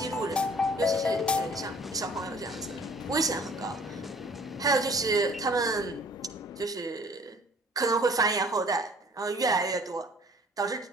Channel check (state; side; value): normal; both; correlation 0.54